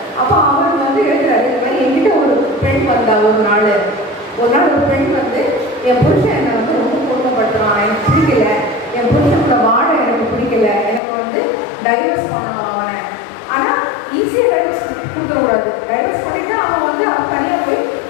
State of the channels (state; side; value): drops out; right; at 11.0 s